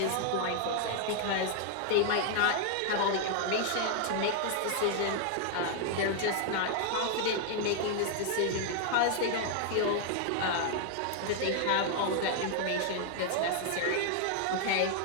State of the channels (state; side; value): different; both; correlation 0.00